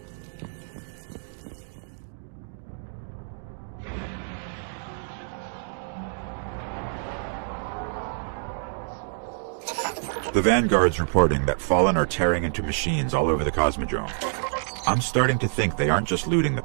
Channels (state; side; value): silent; left; digital silence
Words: The Vanguard's reporting that Fallen are tearing into machines all over the Cosmodrome. I'm starting to think they aren't just looting the